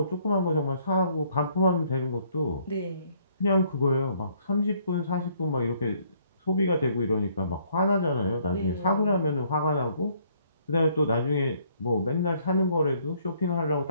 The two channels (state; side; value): inverted; both; correlation -0.65